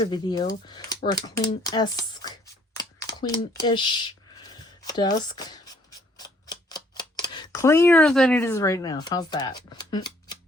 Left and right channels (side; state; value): both; normal; correlation 0.63